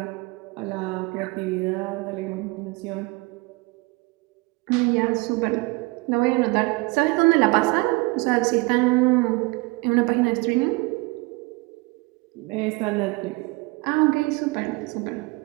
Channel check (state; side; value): quieter; left; 25.2 dB